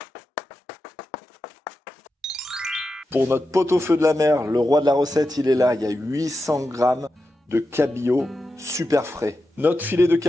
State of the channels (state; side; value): normal; both; correlation 0.90